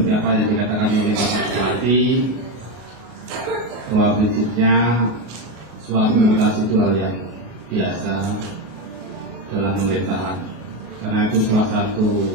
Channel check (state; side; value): late; left; 33 ms